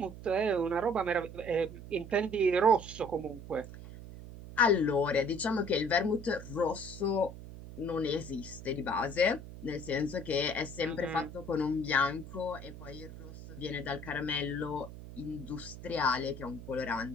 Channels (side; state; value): right; noise; hum, 13 dB below the sound